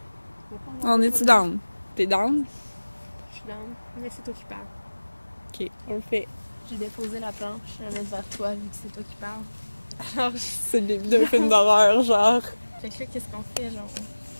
On va pas On est-tu down? T'es down? Je suis down, mais c'est toi qui parles. Ok, on le fait. J'ai déposé la planche, je vais la mettre vers toi vu que c'est toi qui parles. Alors, C'est le début d'un film d'horreur, genre. fait que là, qu'est-ce qu'on fait, genre?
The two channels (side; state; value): both; inverted; correlation -1.00